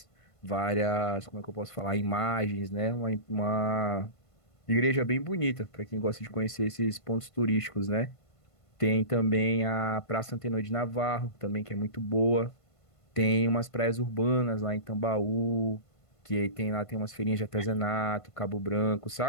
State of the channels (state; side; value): late; right; 1.5 ms